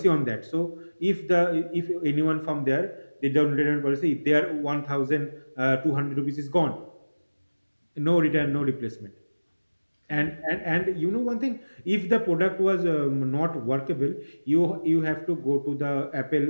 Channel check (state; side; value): inverted; both; correlation -1.00